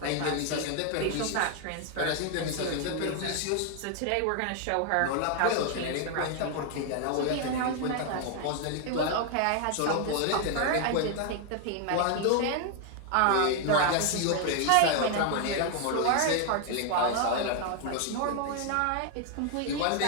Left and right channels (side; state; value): both; different; correlation 0.00